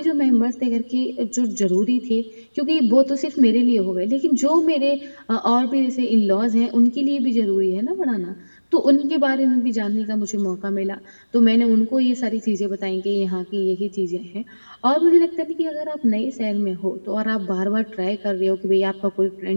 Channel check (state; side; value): inverted; both; correlation -1.00